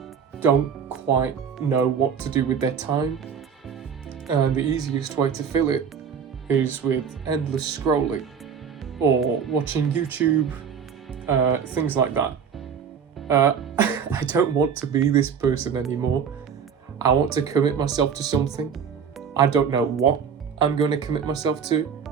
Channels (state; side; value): quieter; left; 6.9 dB